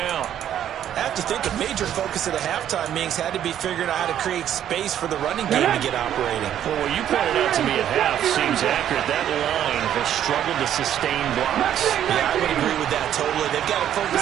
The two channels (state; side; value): quieter; left; 10.6 dB